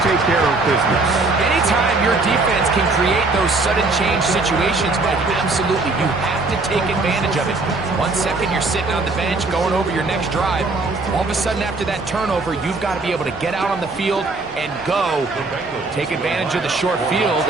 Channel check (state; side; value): quieter; left; 3.5 dB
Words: take care of business. Anytime your defense can create those sudden change situations, Mike, absolutely, you have to take advantage of it. 1 second you're sitting on the bench going over your next drive. All of a sudden after that turnover, you've got to be able to get out on the field and go. Take advantage of the short field